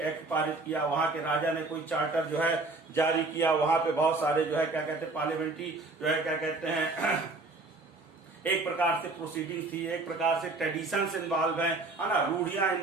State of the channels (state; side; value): quieter; left; 3.3 dB